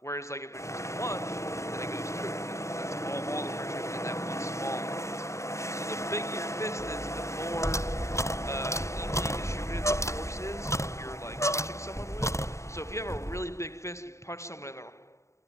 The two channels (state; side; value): late; right; 0.14 ms